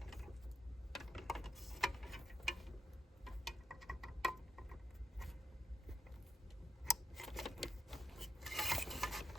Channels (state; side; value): normal; both; correlation 0.77